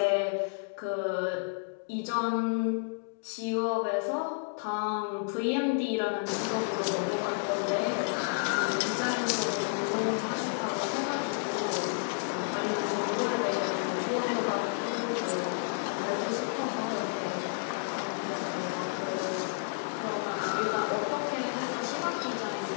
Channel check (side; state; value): right; silent; digital silence